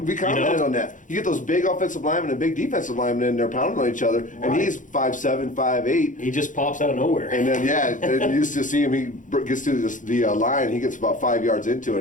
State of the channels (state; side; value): late; right; 0.37 ms